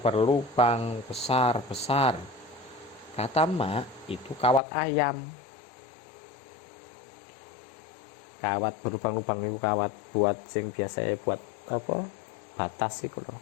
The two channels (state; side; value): drops out; right; at 4.6 s